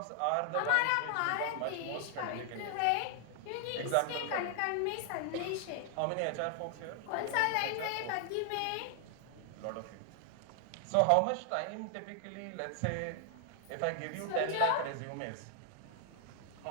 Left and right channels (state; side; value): different; both; correlation 0.00